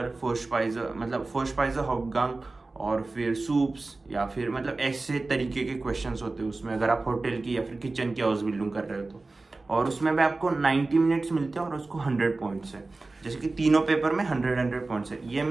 फोर्स्पाइजर मतलब फोर्स्पाइजर हाउपगांग, और फिर सूप्स, या फिर मतलब ऐसे तरीके के क्वेश्चंस होते हैं उसमें, अगर आप होटल की या फिर किचन की हाउस बिल्डिंग कर रहे हो तो। और उसमें भी आपको 90 मिनट्स मिलते हैं और उसको 100 पॉइंट्स है। जैसे कि तीनों पेपर में 100 पॉइंट्स है। ये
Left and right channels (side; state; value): left; quieter; 3.4 dB